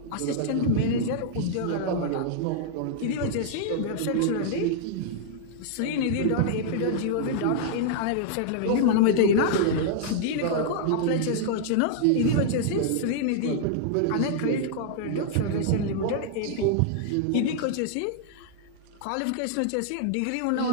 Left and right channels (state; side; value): different; both; correlation -0.01